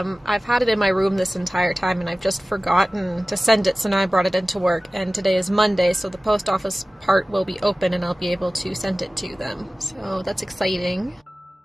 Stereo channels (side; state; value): both; normal; correlation 0.97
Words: I've had it in my room this entire time and I've just forgotten to send it, so now I brought it into work, and today is Monday, so the post office part will be open and I'll be able to send it to them. So that's exciting.